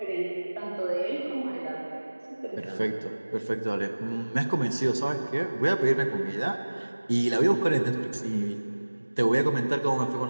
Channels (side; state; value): both; inverted; correlation -1.00